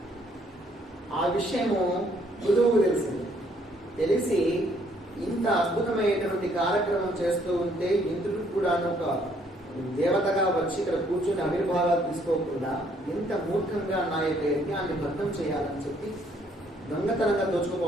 ఆ విషయము పృథువుకు తెలిసింది. తెలిసి ఇంత అద్భుతమైనటువంటి కార్యక్రమం చేస్తూ ఉంటే ఇంద్రుడు కూడా ఒక దేవతగా వచ్చి ఇక్కడ కూర్చొని ఆవిర్భావాలు తీసుకోకుండా ఎంత మూర్ఖంగా నా యొక్క యజ్ఞాన్ని భగ్నం చేయాలని చెప్పి దొంగతనంగా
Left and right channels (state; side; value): normal; both; correlation 0.66